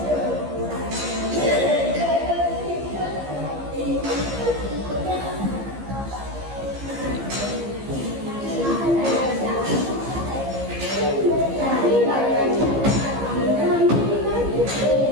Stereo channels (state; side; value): late; left; 15 ms